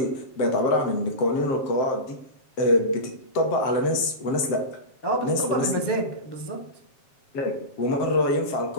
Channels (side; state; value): right; late; 7.7 ms